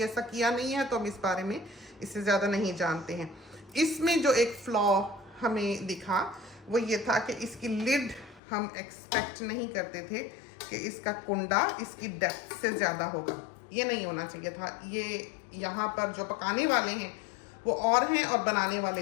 ऐसा किया नहीं है तो हम इस बारे में इससे ज़्यादा नहीं जानते हैं। इसमें जो एक फ्लॉ हमें दिखा वो ये था कि इसकी लिड हम एक्सपेक्ट नहीं करते थे कि इसका कुंडा इसकी डेप्थ से ज़्यादा होगा। ये नहीं होना चाहिए था। ये यहाँ पर जो पकाने वाले हैं वो और हैं और बनाने वाले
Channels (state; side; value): drops out; right; at 8.4 s